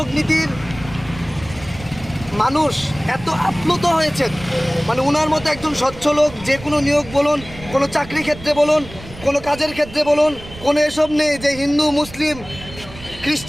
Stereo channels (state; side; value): noise; right; rumble, 16 dB below the sound